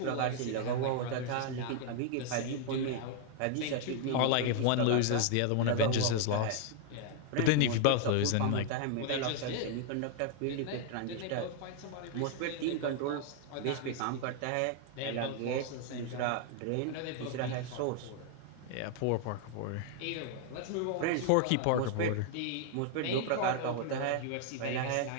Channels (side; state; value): both; different; correlation 0.00